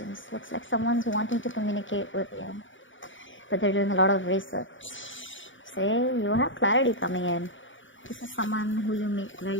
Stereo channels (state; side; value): late; right; 0.56 ms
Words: Looks like someone's wanting to communicate with you, but they're doing a lot of research. Say, you have clarity coming in. This is someone who you make